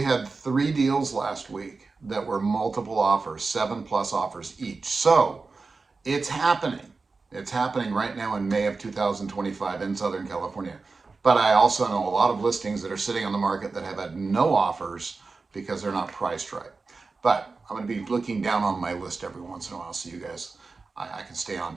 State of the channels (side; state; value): left; quieter; 4.1 dB